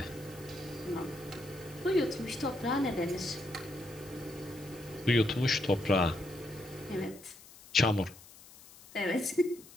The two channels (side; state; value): left; noise; hiss, 21 dB below the sound